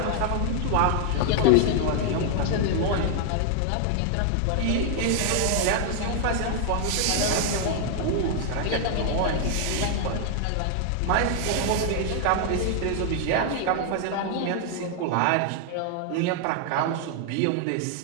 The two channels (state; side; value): different; both; correlation 0.00